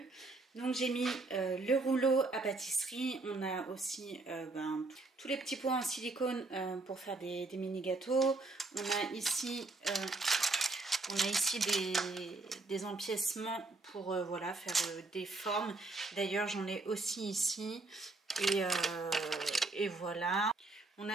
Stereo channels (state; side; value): quieter; left; 3.3 dB